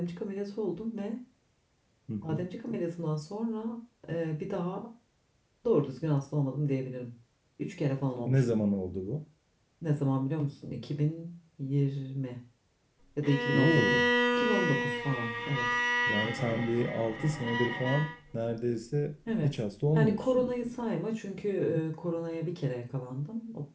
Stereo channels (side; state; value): both; identical; correlation 1.00